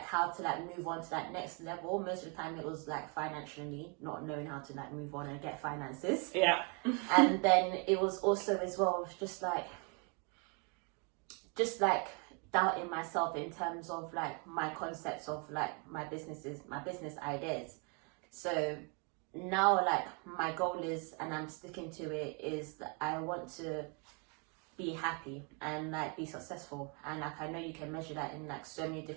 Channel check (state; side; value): quieter; left; 34.3 dB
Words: how to like move on to that next level. Most of the time it was like financially, not knowing how to like move on and get finances. Yeah. And then it was also as well just like doubting myself in terms of like my concepts of like my business ideas. So now like my goal is, and I'm sticking to it, is that I want to be happy and like be successful. And like I know you can measure that in like so many